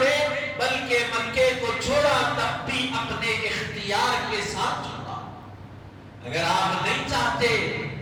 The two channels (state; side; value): identical; both; correlation 1.00